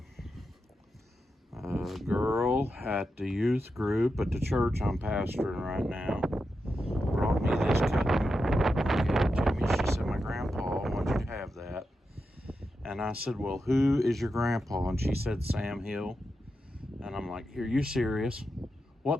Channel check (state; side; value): normal; both; correlation 0.88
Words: girl at the youth group at the church I'm pastoring right now brought me this cutting. Gave it to me. She said, my grandpa wanted you to have that. And I said, well, who is your grandpa? And she said, Sam Hill. And I'm like, are you serious? What